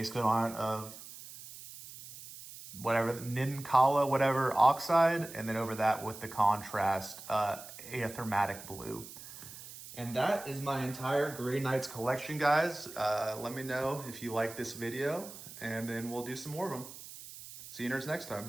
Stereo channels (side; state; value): right; noise; hiss, 14 dB below the sound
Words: coat on it of whatever, Ninkala, whatever, oxide, and then over that with the contrast, Aethermatic blue. And that is my entire Grey Knights collection, guys. Let me know if you like this video, and then we'll do some more of them. See you nerds next